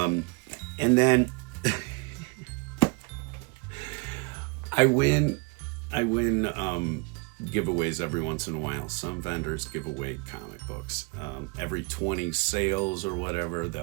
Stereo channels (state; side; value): quieter; left; 30.0 dB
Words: And then I win giveaways every once in a while. Some vendors give away comic books. Every 20 sales or whatever,